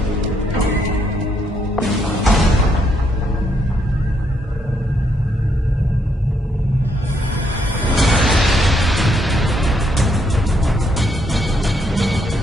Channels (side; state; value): both; normal; correlation 0.74